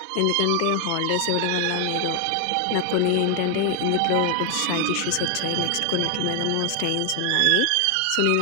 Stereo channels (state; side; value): different; both; correlation 0.00